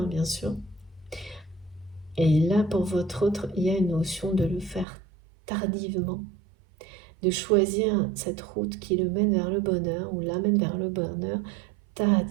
bien sûr. Et là, pour votre autre, il y a une notion de le faire tardivement, de choisir cette route qui le mène vers le bonheur ou l'amène vers le bonheur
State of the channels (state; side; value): drops out; left; at 4.9 s